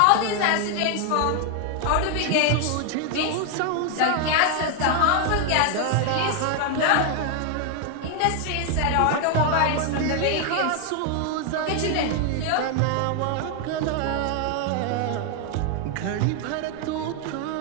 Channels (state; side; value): different; both; correlation 0.00